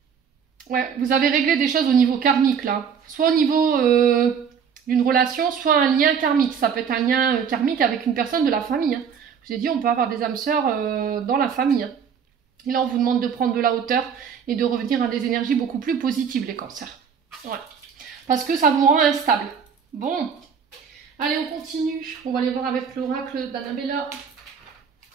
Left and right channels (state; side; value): quieter; left; 7.0 dB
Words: Ouais, vous avez réglé des choses au niveau karmique là. Soit au niveau d'une relation, soit un lien karmique. Ça peut être un lien karmique avec une personne de la famille. Hein. Je vous ai dit, on peut avoir des âmes sœurs dans la famille. Hein. Et là, on vous demande de prendre de la hauteur et de revenir à des énergies beaucoup plus positives, les cancers. Ouais. Parce que ça vous rend instable. Bon. Allez, on continue. On va aller voir avec l'oracle d'Annabella.